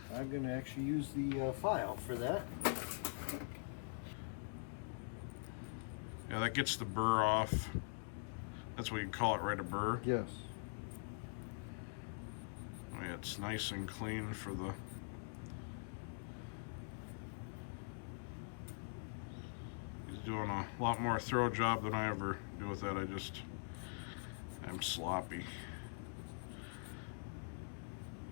I'm going to actually use the file for that. Yeah, that gets the burr off. That's what you call it, right? A burr? Yes. Oh, yeah, it's nice and clean for the... He's doing a lot more throw job than I ever do with that. I'm sloppy.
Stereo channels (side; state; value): right; silent; digital silence